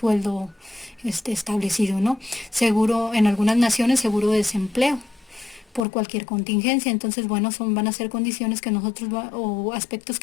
establecido, ¿no? Seguro, en algunas naciones, seguro de desempleo por cualquier contingencia. Entonces, bueno, van a ser condiciones que o aspectos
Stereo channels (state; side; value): drops out; right; at 5.9 s